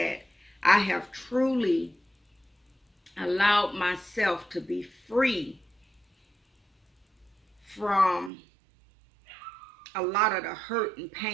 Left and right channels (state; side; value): drops out; left; at 8.3 s